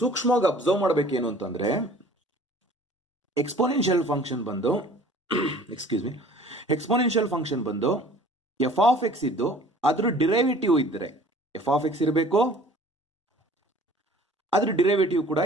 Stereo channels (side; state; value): both; normal; correlation 0.50